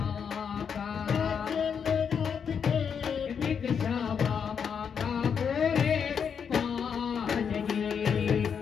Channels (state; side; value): quieter; right; 6.9 dB